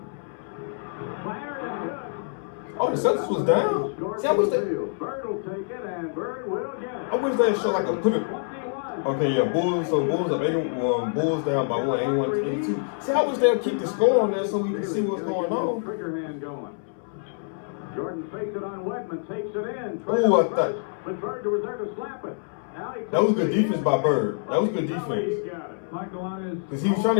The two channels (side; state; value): right; silent; 61 dB below the other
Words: Fired and good. Oh, the Celtics was down. See, I wish they. Bird will take it, and Bird will get it. I wish they show like a put it. 21. Okay, yeah, Bulls. So Bulls up 81. Bulls down by 1, 81 to 82. See, I wish they'll keep the score on there so we can see what's going on. Trigger hand going. Jordan fakes it on Wedman, takes it in. Ooh, I thought. But Bird was there to slap it. Now he That was good defense by Bird. That was good He defense. got it. Michael on his. Because he was trying